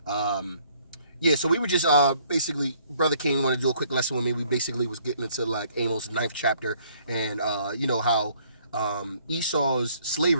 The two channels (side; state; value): both; inverted; correlation -0.63